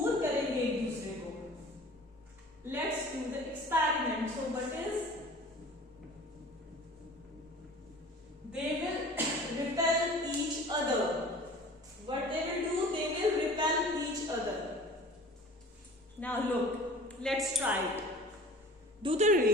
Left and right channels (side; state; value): both; normal; correlation 0.44